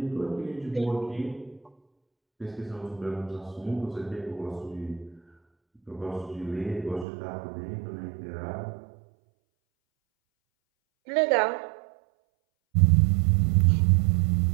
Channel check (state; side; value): drops out; left; at 7.1 s